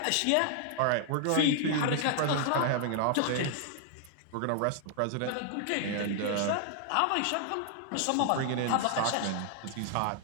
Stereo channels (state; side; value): different; both; correlation 0.00